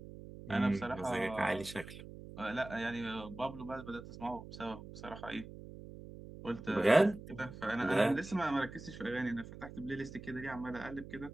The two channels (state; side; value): noise; right; hum, 13 dB below the sound